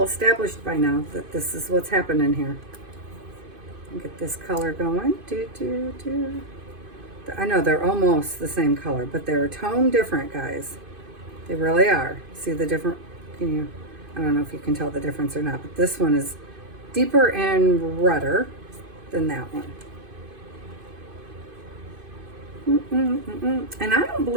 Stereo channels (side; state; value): left; late; 2.5 ms